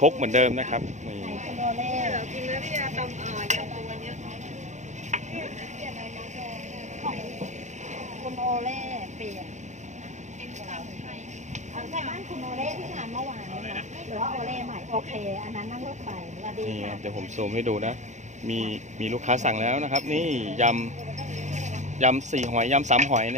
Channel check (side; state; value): left; late; 0.34 ms